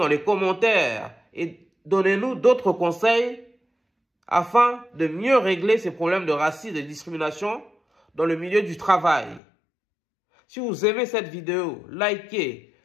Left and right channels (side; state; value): right; drops out; at 9.4 s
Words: les commentaires et donnez-nous d'autres conseils afin de mieux régler ces problèmes de racisme et de discrimination dans le milieu du travail. Si vous aimez cette vidéo, likez,